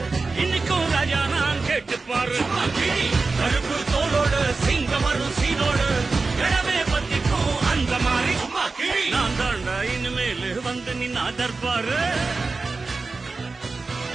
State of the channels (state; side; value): quieter; left; 3.9 dB